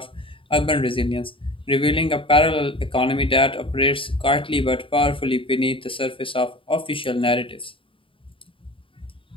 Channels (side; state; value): right; late; 0.25 ms